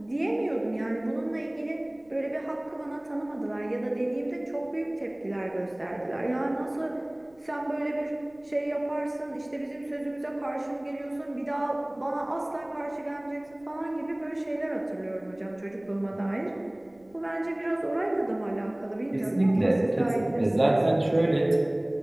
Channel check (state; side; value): noise; left; rumble, 29 dB below the sound